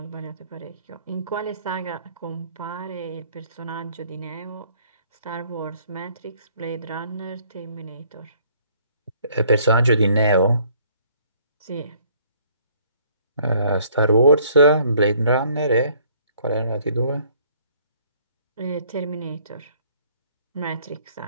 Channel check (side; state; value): both; inverted; correlation -0.61